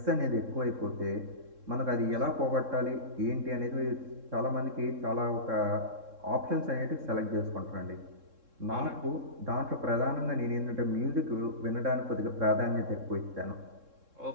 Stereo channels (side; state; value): left; late; 3.7 ms